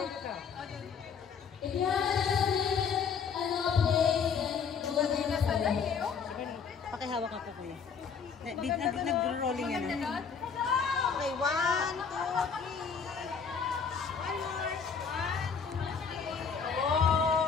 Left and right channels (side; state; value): right; quieter; 6.2 dB